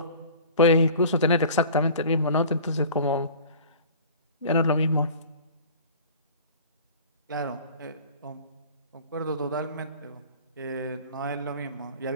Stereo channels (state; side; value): inverted; both; correlation -0.43